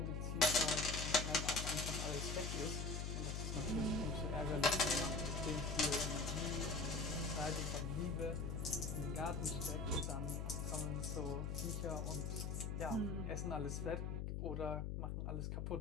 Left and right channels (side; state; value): left; noise; hum, 2 dB below the sound